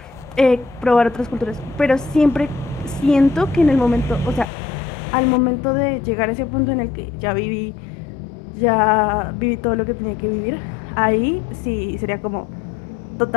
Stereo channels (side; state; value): right; drops out; at 4.5 s